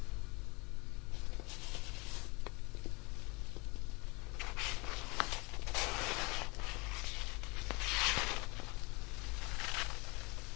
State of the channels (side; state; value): right; quieter; 27.5 dB